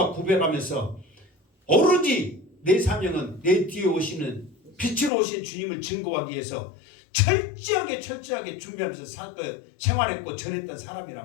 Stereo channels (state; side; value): drops out; right; at 5.1 s